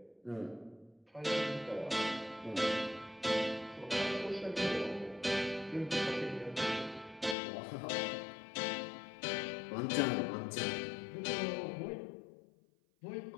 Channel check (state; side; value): drops out; right; at 7.4 s